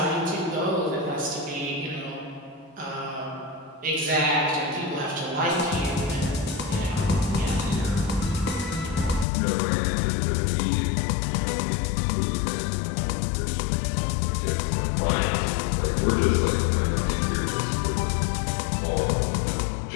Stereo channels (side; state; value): right; drops out; at 9.2 s